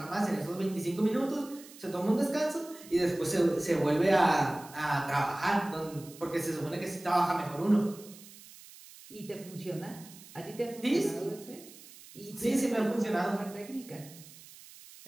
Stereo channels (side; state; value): right; noise; hiss, 19 dB below the sound